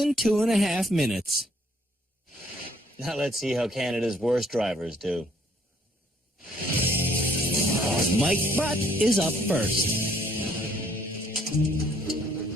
2.5 minutes. Now let's see how Canada's worst drivers do. Mike Butt is up first.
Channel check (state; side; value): normal; both; correlation 0.65